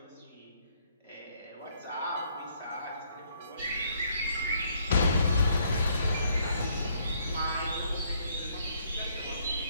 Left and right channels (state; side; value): inverted; both; correlation -0.67